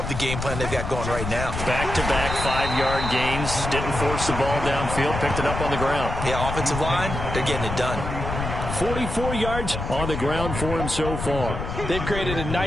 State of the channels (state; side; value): noise; left; rumble, 5 dB below the sound